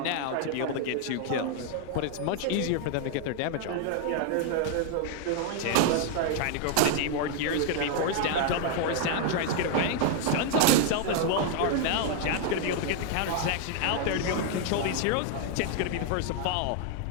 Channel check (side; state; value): both; different; correlation 0.00